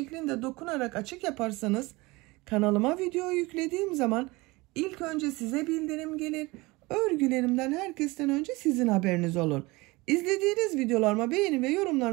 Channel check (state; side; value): quieter; left; 22.9 dB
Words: dokunarak açık yaparsanız kanalıma video yüklediğim zaman ilk önce size bildirim gelir. Örgülerimden herkesten önce sizin haberiniz olur. İzlediğiniz videolarıma beğeni ve